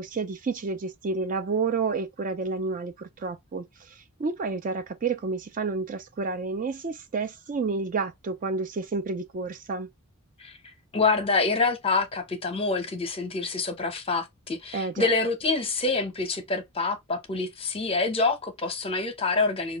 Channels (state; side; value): normal; both; correlation -0.04